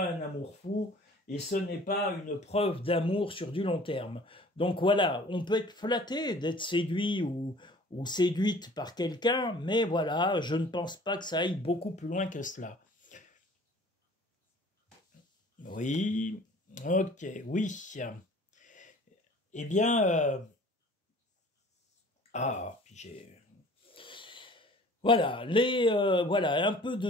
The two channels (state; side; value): normal; both; correlation 0.49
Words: un amour fou et ce n'est pas une preuve d'amour sur du long terme. Donc voilà, on peut être flatté d'être séduit ou séduite par quelqu'un, mais voilà, je ne pense pas que ça aille beaucoup plus loin que cela. Oui, ok, oui. Eh bien, puis j'ai... Voilà, voilà, un peu